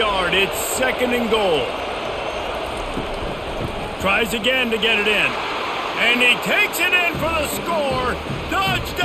It's 2nd and goal. Tries again to get it in. And he takes it in for the score.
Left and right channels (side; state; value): both; identical; correlation 1.00